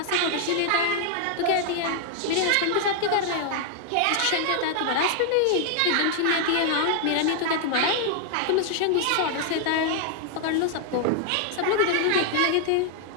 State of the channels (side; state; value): both; different; correlation 0.00